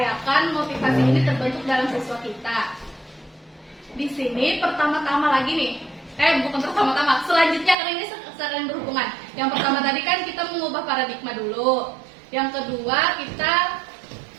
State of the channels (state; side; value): drops out; left; at 7.8 s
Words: motivasi ini terbentuk dalam siswa kita. Di sini pertama-tama lagi nih, bukan pertama-tama, selanjutnya karena ini saling berhubungan. Yang pertama tadi kan kita mengubah paradigma dulu. Yang kedua kita